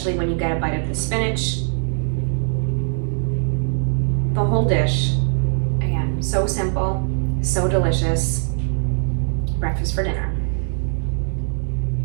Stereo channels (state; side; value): silent; left; 65 dB below the other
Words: when you get a bite of the spinach. The whole dish, again, so simple, so delicious. Breakfast for dinner.